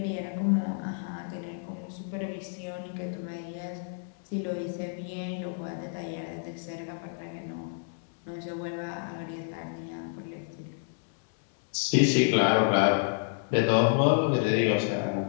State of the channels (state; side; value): silent; right; 58 dB below the other